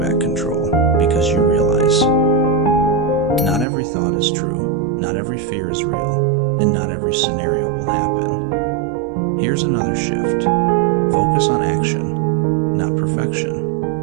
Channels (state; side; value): drops out; left; at 3.7 s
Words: control because you realize not every thought is true, not every fear is real, and not every scenario will happen. Here's another shift. Focus on action, not perfection.